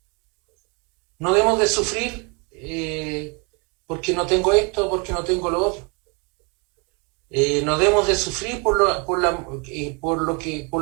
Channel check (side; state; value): left; quieter; 32.5 dB